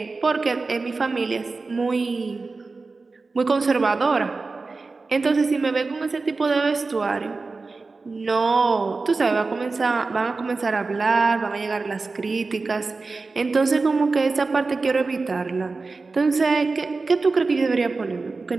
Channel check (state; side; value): quieter; left; 3.9 dB